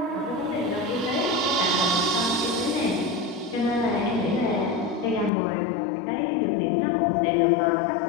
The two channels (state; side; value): drops out; right; at 5.3 s